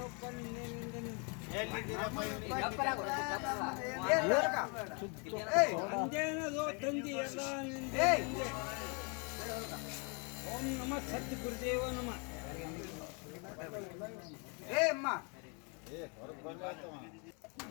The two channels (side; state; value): right; quieter; 34.9 dB